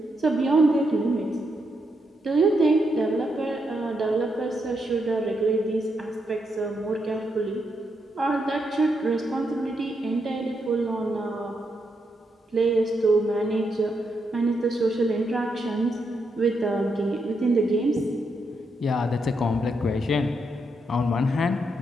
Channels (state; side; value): normal; both; correlation 0.81